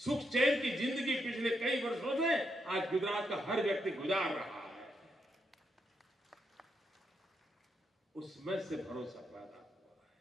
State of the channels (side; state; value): both; normal; correlation 0.81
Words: चैन की जिंदगी पिछले कई वर्षों से आज गुजरात का हर व्यक्ति गुजार रहा है। उसमें से भरोसा पैदा हुआ है।